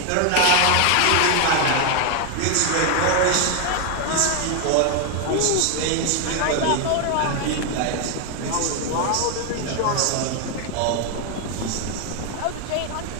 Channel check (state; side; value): different; both; correlation 0.01